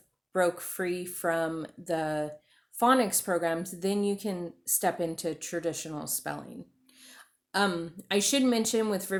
broke free from the phonics programs, then you can step into traditional spelling. I should mention with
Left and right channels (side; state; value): both; identical; correlation 1.00